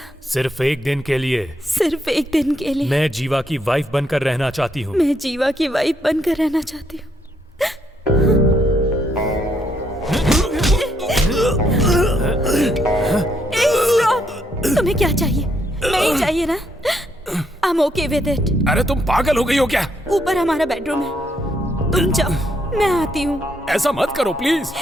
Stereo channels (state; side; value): normal; both; correlation 0.74